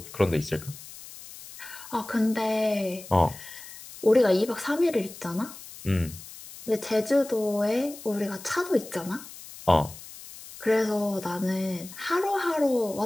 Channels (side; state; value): left; noise; hiss, 16 dB below the sound